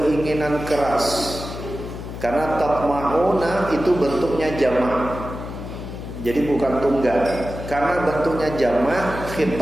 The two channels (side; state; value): left; noise; hum, 9 dB below the sound